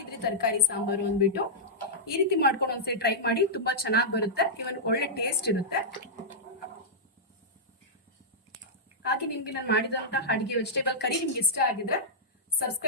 ತರಕಾರಿ ಸಾಂಬಾರು ಅಂದ್ಬಿಟ್ಟು. ಈ ರೀತಿ ಮಾಡ್ಕೊಂಡು ಒಂದ್ಸರಿ ಟ್ರೈ ಮಾಡಿ, ತುಂಬಾ ಚೆನ್ನಾಗಿ ಬರುತ್ತೆ. ಇವನ್ ಒಳ್ಳೆ ಟೇಸ್ಟ್ ಇರುತ್ತೆ. ಹಾಗೆ ನಿಮ್ಗೆ ನಾನು ಮಾಡಿದಂತಹ ಅಡಿಗೆ ವೆಜಿಟೇಬಲ್ ಕರಿ ನಿಮ್ಗೆ ಇಷ್ಟ ಆಗಿದ್ರೆ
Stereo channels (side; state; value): both; normal; correlation -0.10